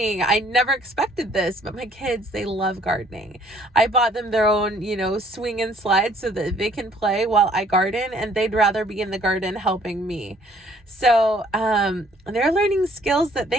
I never expected this, but my kids, they love gardening. I bought them their own, swing and slide so that they can play while I garden, and they'd rather be in the garden helping me. So they're learning skills that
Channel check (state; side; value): normal; both; correlation 0.61